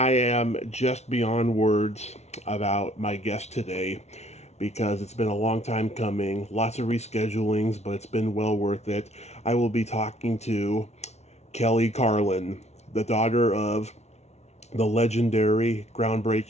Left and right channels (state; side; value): late; right; 0.32 ms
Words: am just beyond words about my guest today because it's been a long time coming, lots of reschedulings, but it's been well worth it. I will be talking to Kelly Carlin, the daughter of the legendary,